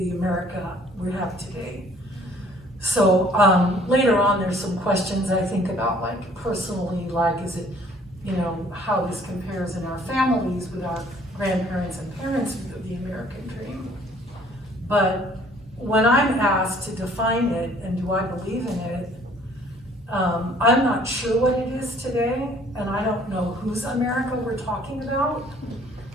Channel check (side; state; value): both; normal; correlation 0.57